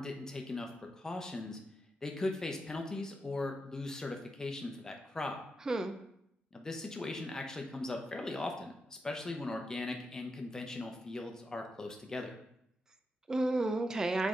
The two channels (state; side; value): normal; both; correlation 0.86